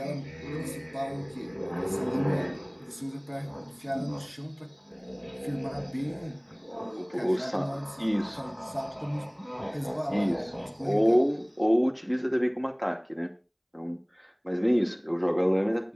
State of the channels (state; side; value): identical; both; correlation 1.00